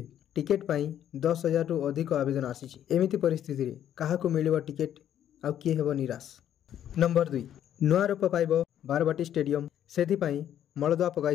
टिकेट पई 10,000 रु अधिक आवेदन आसीछि। एमिति परिस्थिति रे काहाकू मिलिबो टिकेट आ किए हेबो निराश। नंबर 2 नुआ रूप पाइबो बारवाटी स्टेडियम सेथि पई मलदुआ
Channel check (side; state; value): right; quieter; 10.5 dB